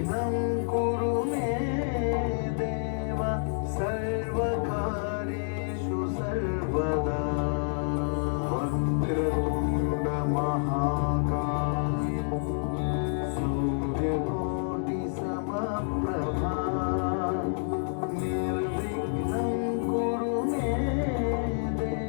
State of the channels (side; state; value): right; silent; digital silence